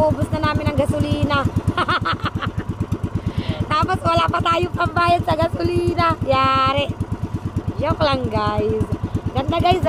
na namin ang gasolina. Tapos wala pa tayong pambayad sa gasolina. Yari. Joke lang guys. Ganda guys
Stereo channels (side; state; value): both; identical; correlation 1.00